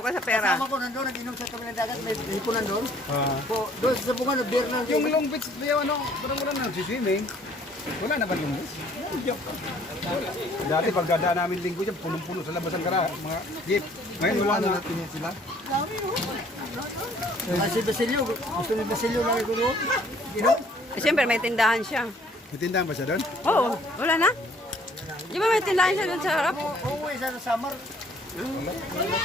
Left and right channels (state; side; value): normal; both; correlation 0.59